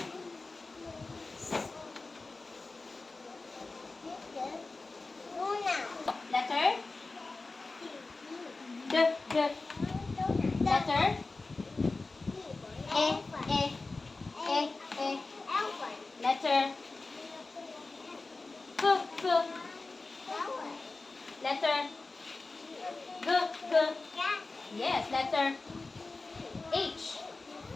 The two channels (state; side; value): quieter; right; 3.5 dB